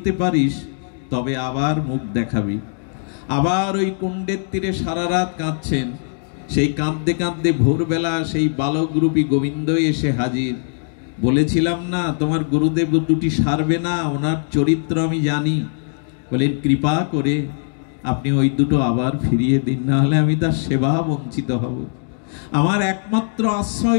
পারিস তবে আবার মুখ দেখাবি। আবার ওই কুণ্ডের তীরে সারা রাত কাঁদছেন। সেই কাঁদতে কাঁদতে ভোরবেলা সেই বালকরূপী গোবিন্দ এসে হাজির। বলেছিলাম না তোমার গুরুদেব দুটি সারবে না, ওনার চরিত্র আমি জানি। বলেন, কৃপা করে আপনি ওই দুটো আবার ফিরিয়ে দিন, না হলে আমি তার সেবা বঞ্চিত হব। আমার একমাত্র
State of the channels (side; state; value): right; silent; digital silence